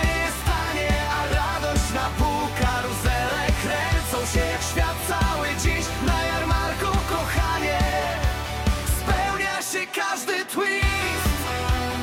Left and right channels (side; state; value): both; identical; correlation 1.00